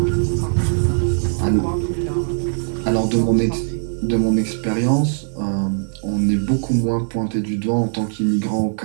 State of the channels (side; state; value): left; silent; 57 dB below the other